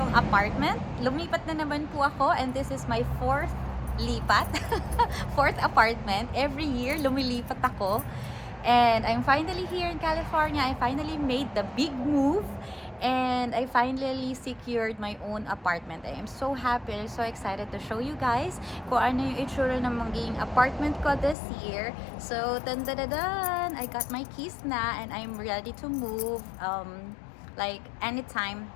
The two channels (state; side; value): drops out; right; at 21.4 s